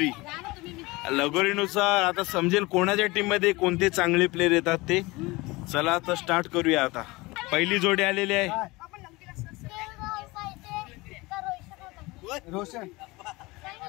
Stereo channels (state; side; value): quieter; right; 22.6 dB